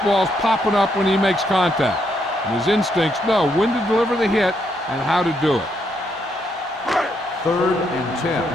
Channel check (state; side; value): normal; both; correlation 0.76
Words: popping up when he makes contact. And his instincts know when to deliver the hit and how to do it. Third and 10.